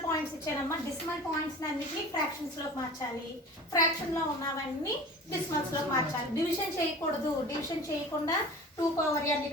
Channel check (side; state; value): both; normal; correlation 0.38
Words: పాయింట్స్ ఇచ్చానమ్మా. డెసిమల్ పాయింట్స్ అన్నిటిని ఫ్రాక్షన్స్ లోకి మార్చాలి. ఫ్రాక్షన్ లో ఉన్నవన్నీ డెసిమల్స్ లోకి మార్చాలి. డివిజన్ చేయకూడదు. డివిజన్ చేయకుండా 2 పవర్ n,